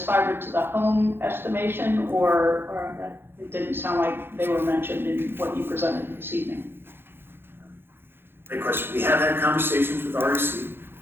fiber to the home estimation, or it didn't sound like they were mentioned in what you presented this evening? Great question. We have had conversations with REC.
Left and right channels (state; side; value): late; left; 0.10 ms